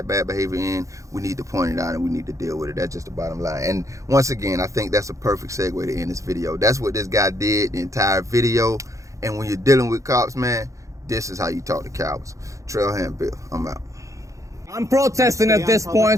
bad behavior in, we need to point it out and we need to deal with it. That's just the bottom line. And once again, I think that's a perfect segue to end this video. That's what this guy did the entire video. And when you're dealing with cops, man, this is how you talk to cowards. Trailhand Bill, I'm out. I'm protesting at this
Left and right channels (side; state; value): left; late; 0.15 ms